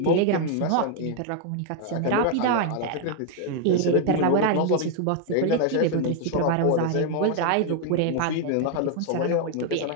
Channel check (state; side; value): different; both; correlation 0.00